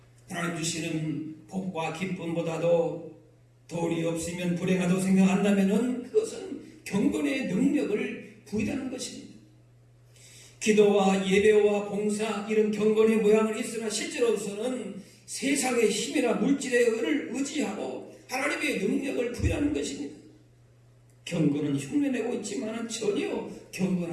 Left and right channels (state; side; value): identical; both; correlation 1.00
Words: 하나님 주시는 복과 기쁨보다도 돈이 없으면 불행하다고 생각한다면 그것은 경건의 능력을 부인하는 것입니다. 기도와 예배와 봉사 이런 경건의 모양은 있으나 실제로서는 세상의 힘이나 물질의 은을 의지하고 하나님의 능력을 부인하는 것입니다. 경건은 흉내내고 있지만 전혀